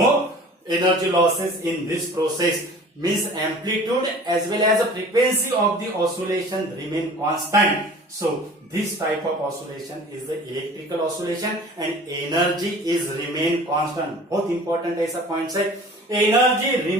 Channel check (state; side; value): normal; both; correlation 0.44